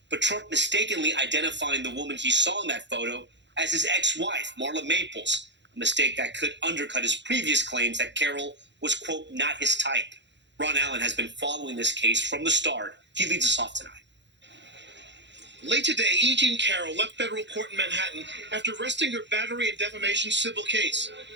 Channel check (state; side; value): late; left; 0.52 ms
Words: but Trump mistakenly identifying the woman he saw in that photo as his ex-wife, Marla Maples, a mistake that could undercut his previous claims that Carol was, quote, not his type. Ron Allen has been following this case from the start. He leads us off tonight. Late today, E. Jean Carroll left federal court in Manhattan after resting her battery and defamation civil case